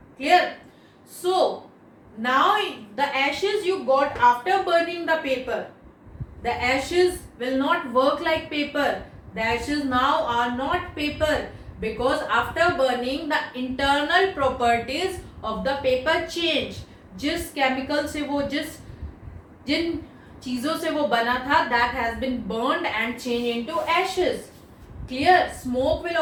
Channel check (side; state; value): both; identical; correlation 1.00